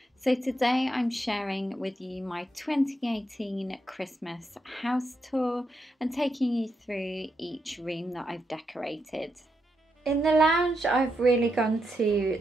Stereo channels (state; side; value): normal; both; correlation 0.82